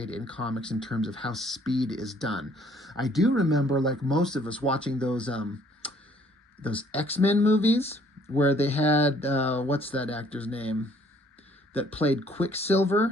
in comics in terms of how speed is done. I do remember, like most of us, watching those X-Men movies where they had, what's that actor's name that played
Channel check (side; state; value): both; normal; correlation 0.61